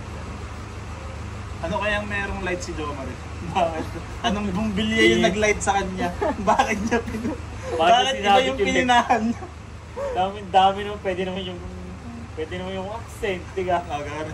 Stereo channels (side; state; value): both; identical; correlation 1.00